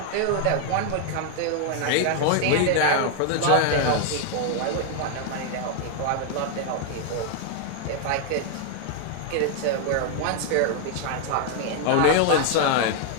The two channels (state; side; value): different; both; correlation 0.00